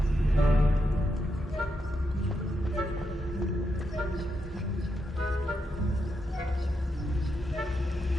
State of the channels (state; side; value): normal; both; correlation 0.83